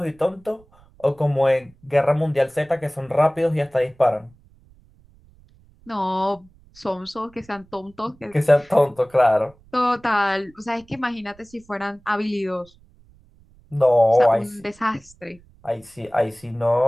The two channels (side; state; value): right; noise; rumble, 28 dB below the sound